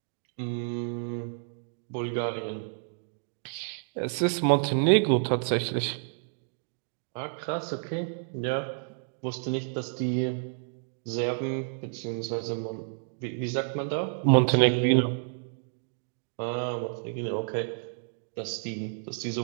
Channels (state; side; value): silent; left; digital silence